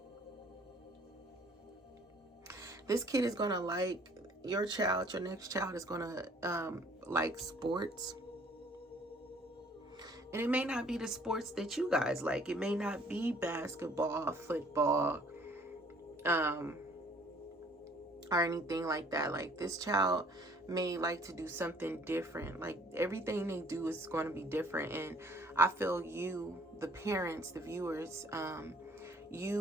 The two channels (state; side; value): normal; both; correlation 0.57